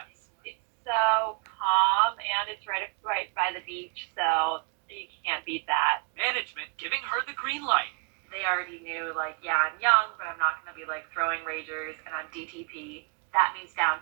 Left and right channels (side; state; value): left; quieter; 35.8 dB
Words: It's so calm, and it's right by the beach, so you can't beat that. Management giving her the green light. They already knew, yeah, I'm young, but I'm not going to be, throwing ragers, and I'm DTP. That means down